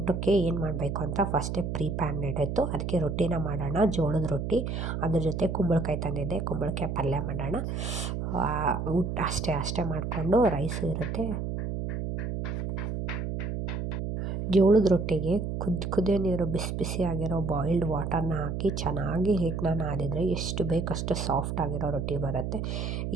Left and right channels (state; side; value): noise; right; hum, 3 dB below the sound